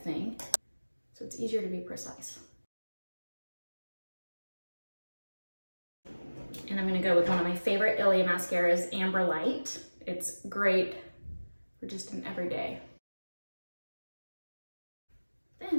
thing. So it's easier to be precise. And I'm going to go with one of my favorite Ilia mascaras, Amber Light. It's great for just an everyday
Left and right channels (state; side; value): inverted; both; correlation -1.00